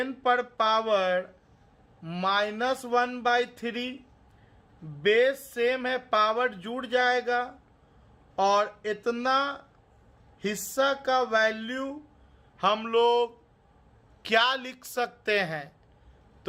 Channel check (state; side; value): identical; both; correlation 1.00